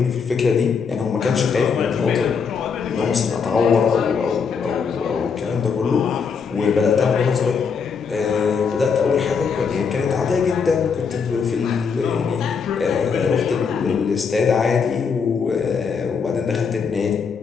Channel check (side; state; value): right; quieter; 5.9 dB